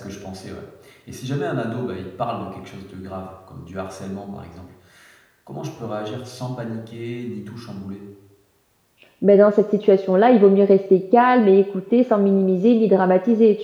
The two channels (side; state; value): both; identical; correlation 1.00